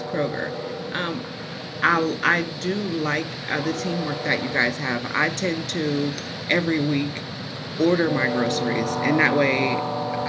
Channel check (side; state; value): both; identical; correlation 1.00